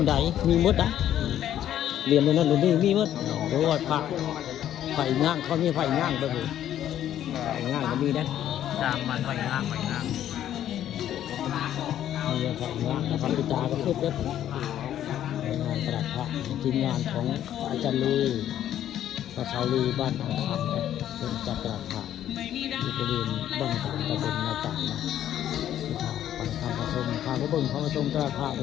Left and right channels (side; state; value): right; quieter; 11.3 dB